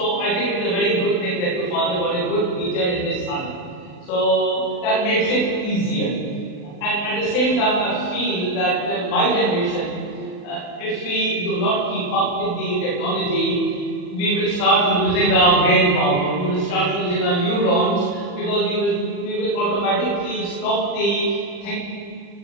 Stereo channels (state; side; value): late; right; 39 ms